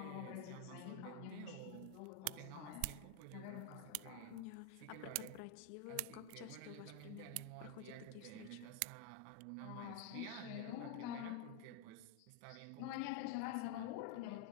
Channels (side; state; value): both; different; correlation 0.01